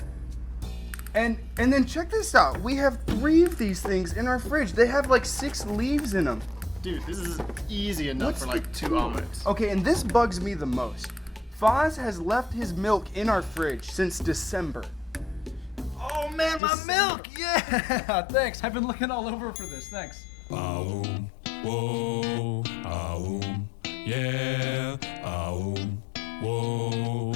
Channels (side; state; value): right; drops out; at 16.6 s